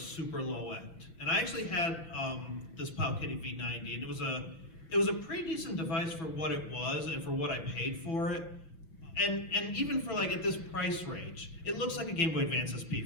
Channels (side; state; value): right; late; 6.3 ms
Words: low end. And I actually had this Powkiddy V90, and it was a pretty decent device for what it was and for what I paid for it. And even for at this price range, it looks like a Game Boy Advance SP,